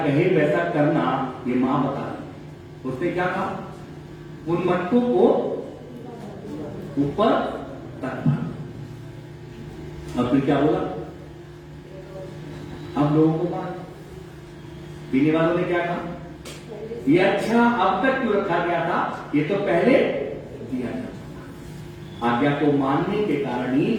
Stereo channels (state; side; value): identical; both; correlation 1.00